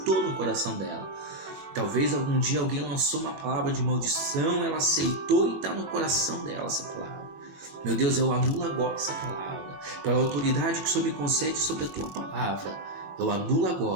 no coração dela. Talvez algum dia alguém lançou uma palavra de maldição, ela aceitou e está no coração dela essa palavra. Meu Deus, eu anulo agora essa palavra. Pela autoridade que o Senhor me concede sobre a Tua palavra, eu anulo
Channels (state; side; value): late; left; 22 ms